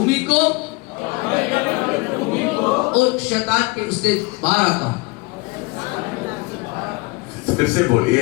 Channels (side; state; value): right; quieter; 25.7 dB